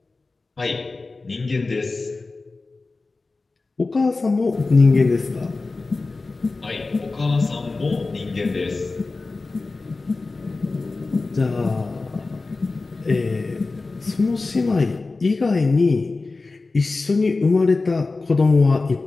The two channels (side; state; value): right; quieter; 3.6 dB